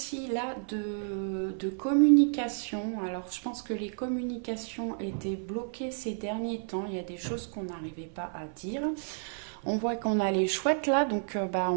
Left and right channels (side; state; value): left; silent; 57 dB below the other